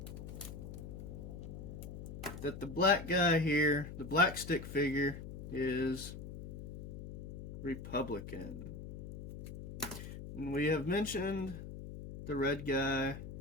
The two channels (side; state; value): left; noise; hum, 10 dB below the sound